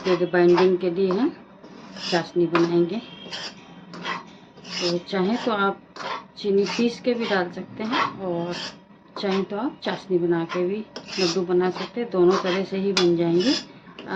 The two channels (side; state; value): both; identical; correlation 1.00